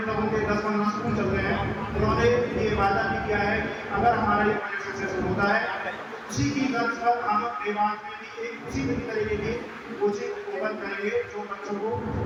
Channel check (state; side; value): identical; both; correlation 1.00